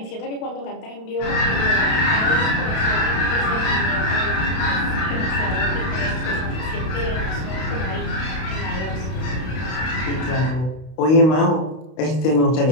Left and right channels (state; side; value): late; right; 32 ms